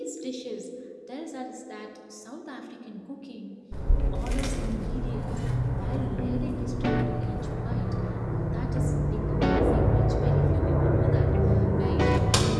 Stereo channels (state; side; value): identical; both; correlation 1.00